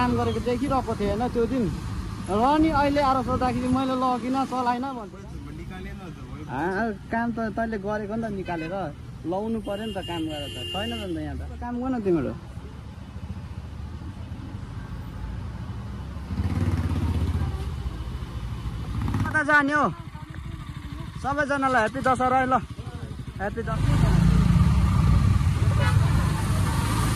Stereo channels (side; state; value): both; identical; correlation 1.00